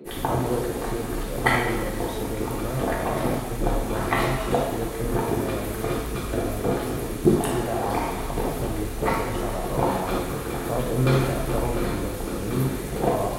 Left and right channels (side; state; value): both; identical; correlation 1.00